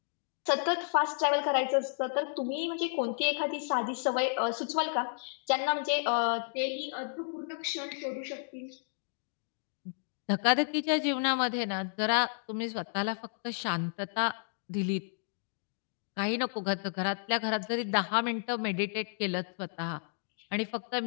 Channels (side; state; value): right; silent; digital silence